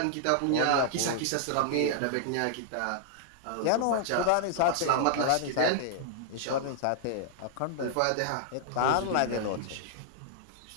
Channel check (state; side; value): different; both; correlation -0.01